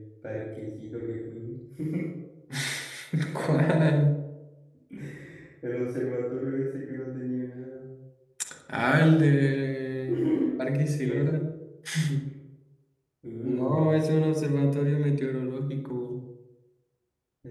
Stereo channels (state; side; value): identical; both; correlation 1.00